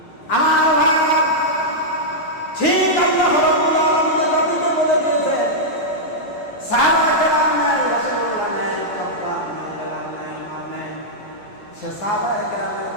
আমার ভাইরা, ঠিক আল্লাহ রাব্বুল আলামিন জাতিকে বলে দিয়েছেন, সাহাবায়ে কেরাম নাই, রাসূলুল্লাহ নাই, খাব্বাব নাই, বেলাল নাই, উমর নাই। সে সাহাবায়ে কেরামের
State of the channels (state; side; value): late; right; 9.7 ms